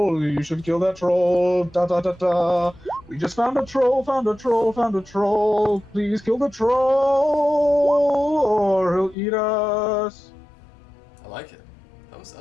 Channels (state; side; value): drops out; right; at 9.2 s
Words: You should kill that troll. Da da da da. We just found a troll, found a troll, found a troll. Please kill the troll, or he'll eat us." I like it. That was